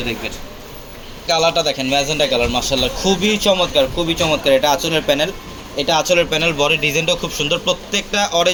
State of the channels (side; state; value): both; identical; correlation 1.00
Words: দেখবেন। কালারটা দেখেন, ম্যাজেন্টা কালার, মাশাআল্লাহ খুবই চমৎকার, খুবই চমৎকার। এটা আঁচলের প্যানেল, বডি ডিজাইনটাও খুব সুন্দর। প্রত্যেকটা